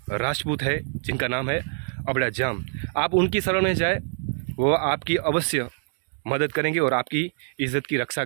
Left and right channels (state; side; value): silent; left; 62 dB below the other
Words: राजपूत है जिनका नाम है अबड़ाजाम, आप उनकी शरण में जाए, वो आपकी अवश्य मदद करेंगे और आपकी इज़्ज़त की रक्षा